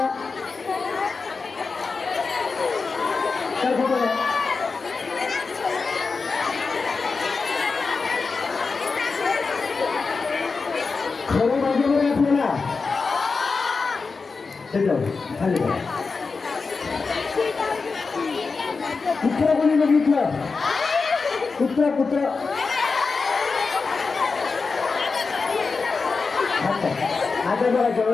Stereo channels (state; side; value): quieter; right; 4.5 dB